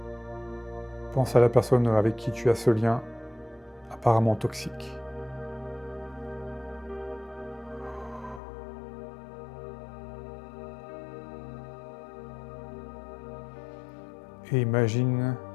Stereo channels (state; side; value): drops out; right; at 8.4 s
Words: Pense à la personne avec qui tu as ce lien apparemment toxique. Et imagine